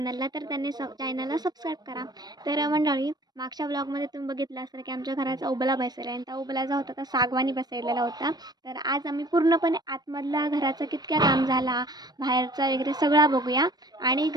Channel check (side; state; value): left; late; 0.19 ms